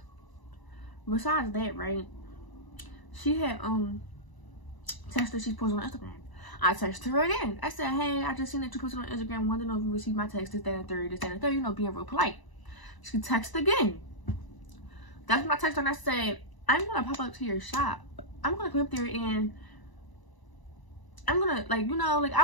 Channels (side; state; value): right; late; 1.0 ms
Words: right, she had texted, she posted on Instagram. I texted her again. I said, hey, I just seen that you posted on Instagram, wanted to know if you received my text, this, that, and third, you know, being real polite. She texted again. That's when I texted her and I said, I'm gonna pop up to your shop. I'm gonna come up there and I'm gonna, like, you know, like, I